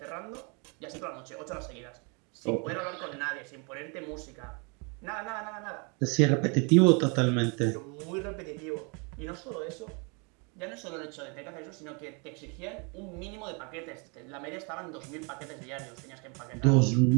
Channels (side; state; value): left; quieter; 33.6 dB